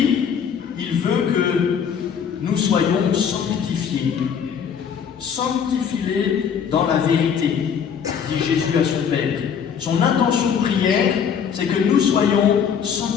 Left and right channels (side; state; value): right; quieter; 7.4 dB